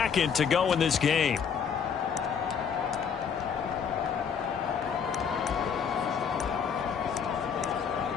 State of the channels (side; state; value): right; quieter; 6.9 dB